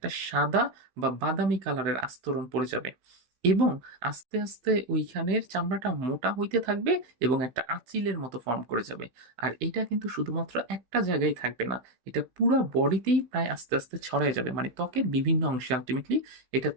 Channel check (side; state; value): left; late; 16 ms